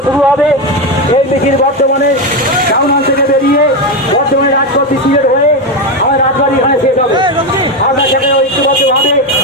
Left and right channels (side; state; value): both; normal; correlation 0.12